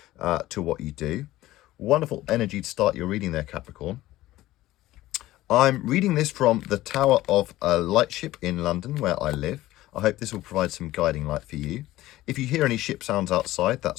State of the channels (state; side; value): quieter; right; 16.2 dB